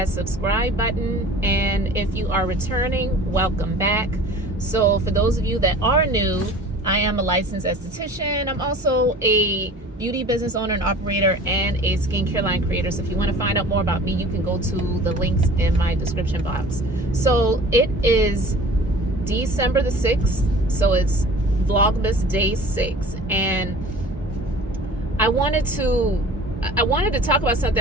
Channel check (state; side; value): normal; both; correlation 0.43